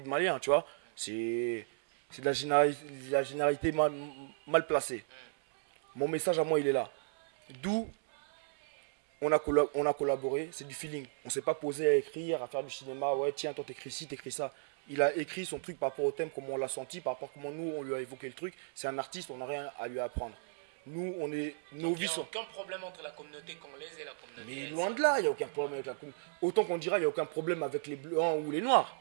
Malien, tu vois, c'est de la généralité mal placée. Mon message à moi, il est là. D'où on a collaboré, c'est du feeling. On ne s'est pas posé à écrire, à faire du cinéma. Ouais, tiens, toi, t'écris ci, t'écris ça. Il a écrit son truc par rapport au thème, comment on l'a senti, par rapport à comment nous, on lui a évoqué le truc. C'est un artiste, on n'a rien à lui apprendre. Nous, on est novices. Mais loin de là, il n'y a aucun problème avec la communauté. Autant qu'on dira, il n'y a aucun problème avec les blancs ou les noirs.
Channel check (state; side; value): silent; left; 55 dB below the other